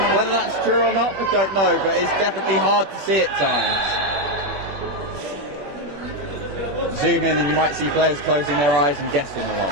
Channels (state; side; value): late; left; 21 ms